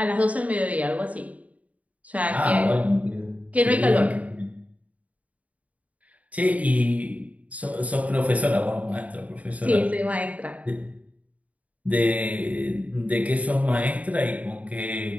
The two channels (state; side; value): late; left; 0.070 ms